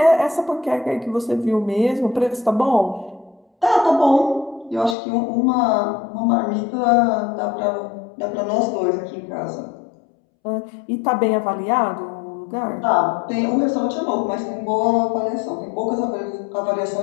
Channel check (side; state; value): right; drops out; at 5.0 s